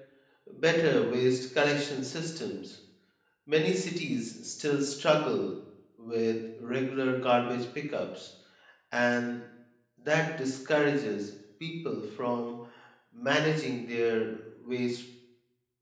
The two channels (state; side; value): identical; both; correlation 1.00